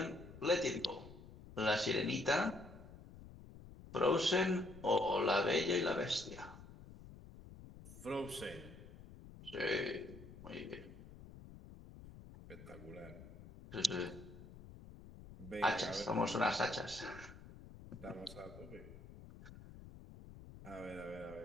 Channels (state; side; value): noise; left; rumble, 16 dB below the sound